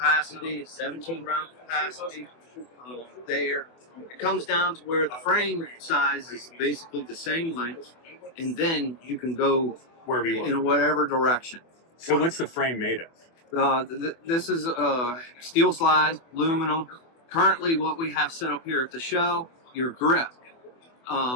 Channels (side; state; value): right; late; 24 ms